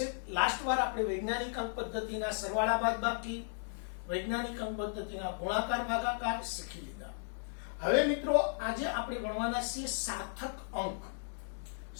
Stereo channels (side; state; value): right; silent; digital silence